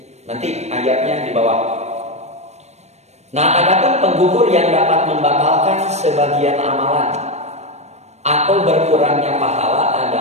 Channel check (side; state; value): left; late; 0.32 ms